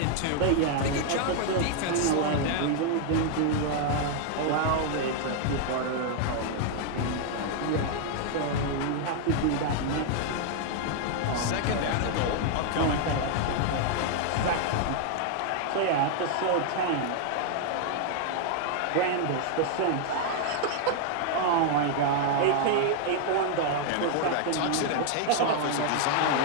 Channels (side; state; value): both; different; correlation 0.00